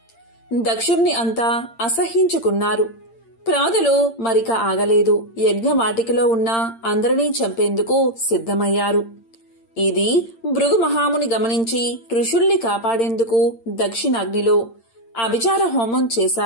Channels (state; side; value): late; right; 8.8 ms